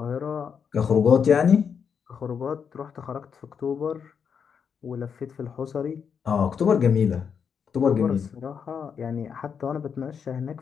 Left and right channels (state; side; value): quieter; right; 6.9 dB